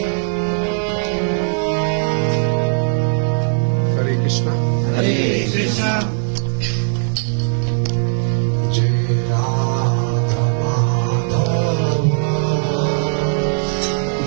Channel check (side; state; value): left; silent; 62 dB below the other